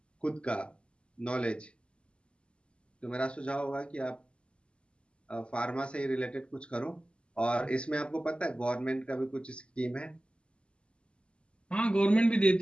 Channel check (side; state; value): right; late; 0.054 ms